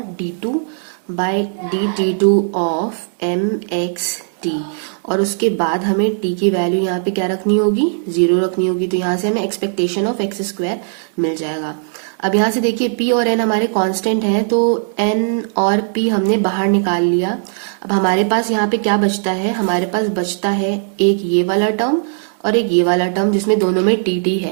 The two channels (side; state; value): left; silent; digital silence